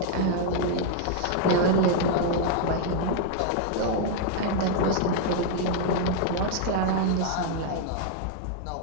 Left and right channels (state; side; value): different; both; correlation 0.00